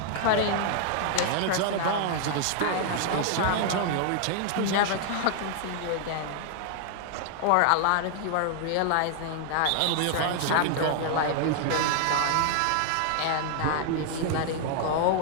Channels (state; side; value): different; both; correlation 0.00